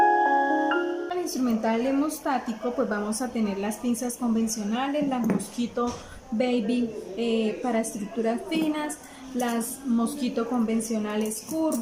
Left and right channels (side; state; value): both; identical; correlation 1.00